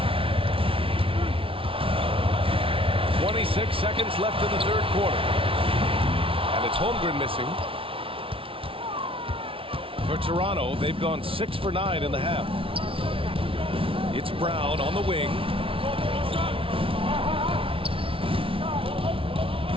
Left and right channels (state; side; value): late; left; 0.26 ms